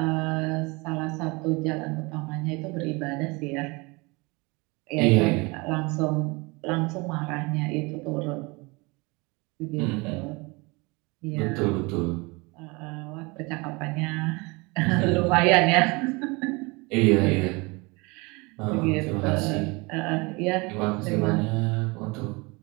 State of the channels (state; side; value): quieter; left; 26.4 dB